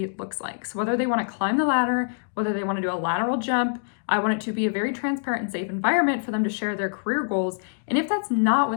looks like. So whether they want to climb the ladder, whether they want to do a lateral jump, I want it to be a very transparent and safe environment for them to share their career goals. And if that's not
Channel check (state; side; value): silent; right; digital silence